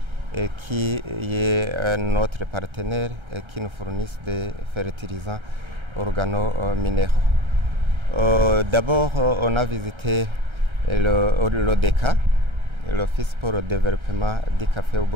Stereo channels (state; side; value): late; left; 1.3 ms